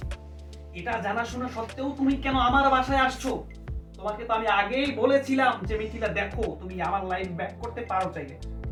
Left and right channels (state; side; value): identical; both; correlation 1.00